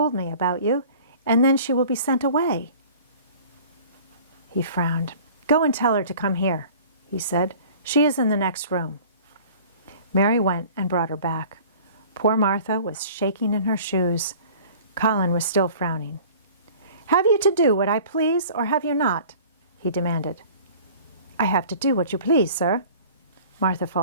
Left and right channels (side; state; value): both; inverted; correlation -0.46